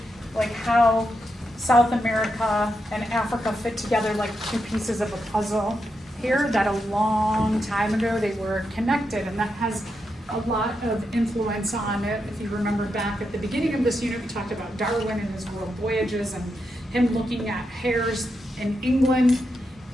like how South America and Africa fit together like two pieces of a puzzle here, that a long time ago they were connected, and that has a lot of influence on it. If you remember back at the beginning of this unit, we talked about Darwin and his world voyages and him looking at hares in England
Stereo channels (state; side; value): normal; both; correlation 0.84